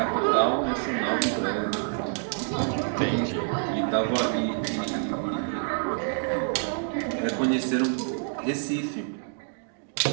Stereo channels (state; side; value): silent; left; digital silence